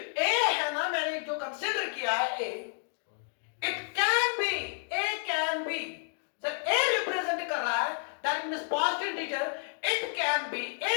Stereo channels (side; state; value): right; silent; 57 dB below the other